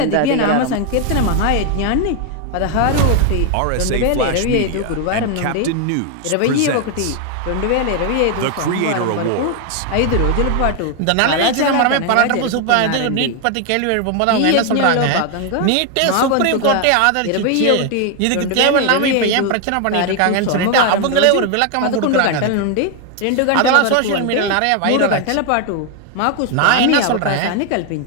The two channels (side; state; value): both; different; correlation 0.01